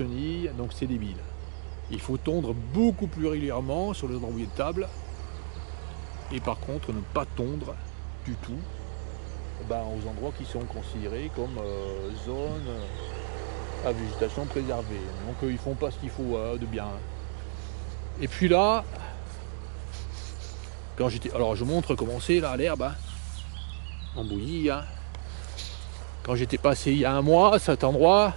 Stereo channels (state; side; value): silent; left; digital silence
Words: Donc c'est débile. Il faut tondre beaucoup plus régulièrement sur les endroits où il y a de table. Et par contre, ne pas tondre du tout aux endroits qui sont considérés comme zone à végétation préservée. Donc ils font pas ce qu'il faut de bien. Et puis là, quand j'étais... Alors je montre comment c'est là l'herbe. Hein, en bouillie. Hein. Quand j'étais passé il y a un mois à cet endroit,